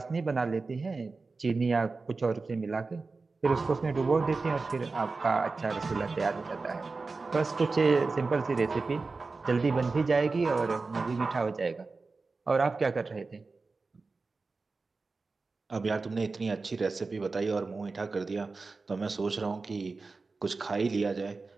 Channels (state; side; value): quieter; left; 4.0 dB